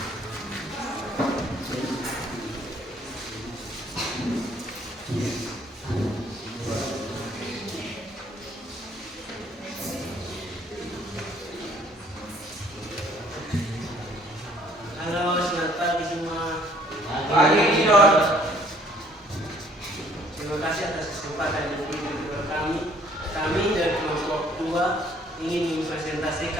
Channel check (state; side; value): normal; both; correlation 0.60